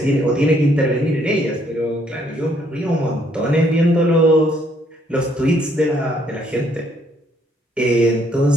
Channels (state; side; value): normal; both; correlation 0.68